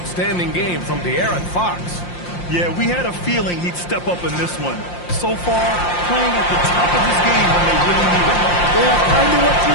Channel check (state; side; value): late; right; 5.7 ms